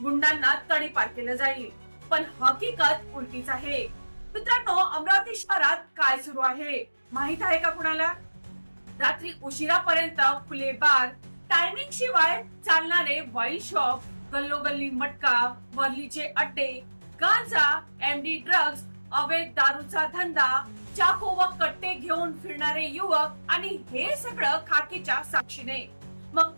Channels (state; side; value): inverted; both; correlation -1.00